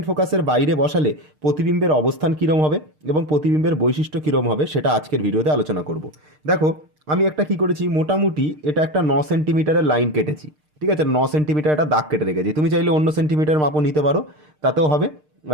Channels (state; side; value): late; left; 6.6 ms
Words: ফোকাসের বাইরে বসালে প্রতিবিম্বের অবস্থান কীরকম হবে এবং প্রতিবিম্বের বৈশিষ্ট্য কীরকম হবে সেটা আজকের ভিডিওতে আলোচনা করব। দেখো, আমি একটা কি করেছি, মোটামুটি এটা একটা 9 সেন্টিমিটারের লাইন কেটেছি। ঠিক আছে, 9 সেন্টিমিটার একটা দাগ কেটে রেখেছি। তুমি চাইলে অন্য সেন্টিমিটার মাপও নিতে পারো, তাতেও হবে,